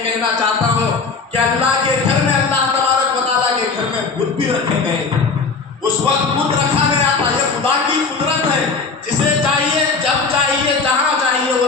کہنا چاہتا ہوں کہ اللہ کے گھر میں اللہ تبارک و تعالیٰ کے گھر میں بت بھی رکھے گئے تھے، اس وقت بت رکھا گیا تھا۔ یہ خدا کی قدرت ہے، جسے چاہیے جب چاہیے جہاں چاہیے وہ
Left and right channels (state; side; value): quieter; right; 4.5 dB